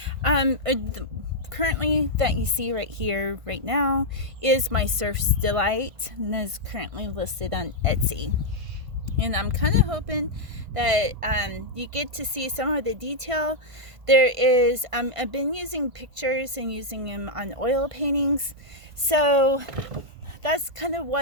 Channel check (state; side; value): late; left; 1.5 ms